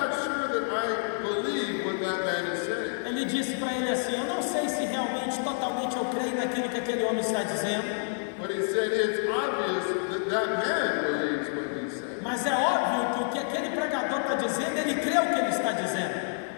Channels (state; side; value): silent; right; digital silence